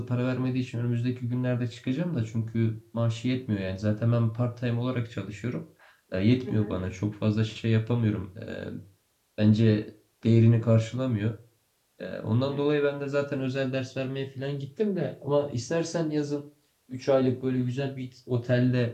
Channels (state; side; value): identical; both; correlation 1.00